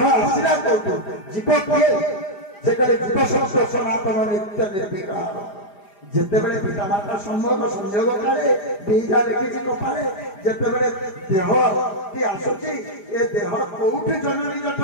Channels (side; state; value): right; late; 4.9 ms